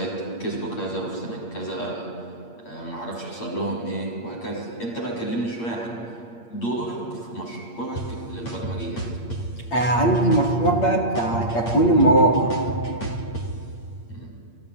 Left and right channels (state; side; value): late; right; 8.6 ms